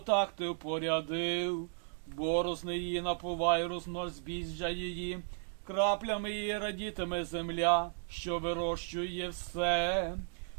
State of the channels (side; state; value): left; silent; digital silence